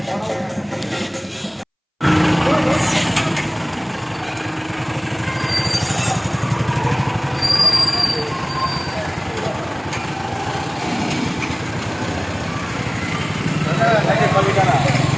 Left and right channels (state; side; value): identical; both; correlation 1.00